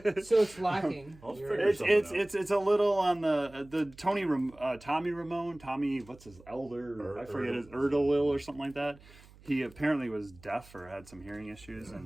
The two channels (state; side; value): noise; right; hum, 23 dB below the sound